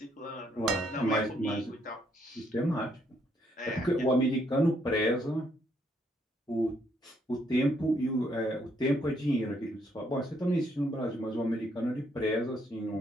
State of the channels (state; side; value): normal; both; correlation 0.72